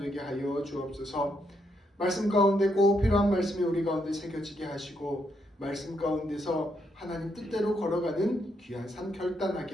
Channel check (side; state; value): both; normal; correlation 0.77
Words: 하여 주옵소서. 말씀 가운데 꼭 필요한 말씀이 우리 가운데 새겨지게 하시고, 말씀 가운데서 하나님 뜻대로 걸어가는 귀한 삶